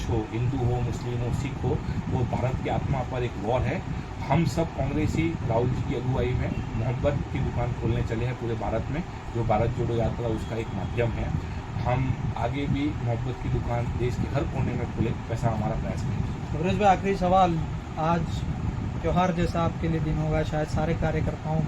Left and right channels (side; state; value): both; identical; correlation 1.00